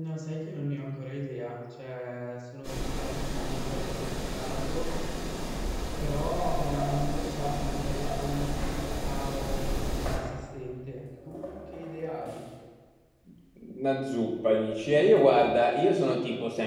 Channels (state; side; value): identical; both; correlation 1.00